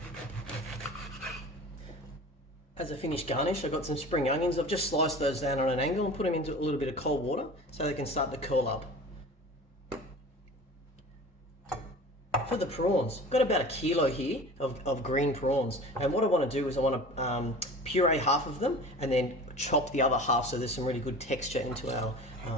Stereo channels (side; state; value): both; normal; correlation 0.38